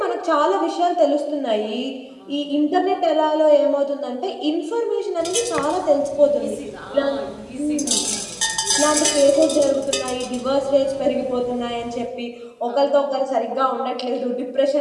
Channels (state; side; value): identical; both; correlation 1.00